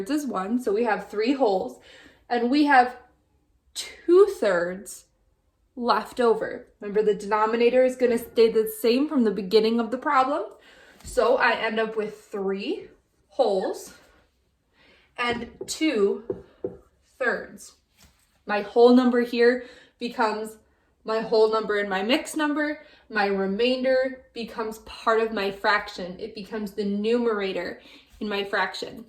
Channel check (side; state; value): both; identical; correlation 1.00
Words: is 1. So we have 3 wholes, and we have 2 thirds left over. Remember, the denominator is going to stay the same from the beginning of the problem. So I end up with 3 wholes and 2 thirds. My whole number here becomes my whole number in my mixed number. My remainder becomes part of my fraction. It becomes the numerator in my fraction.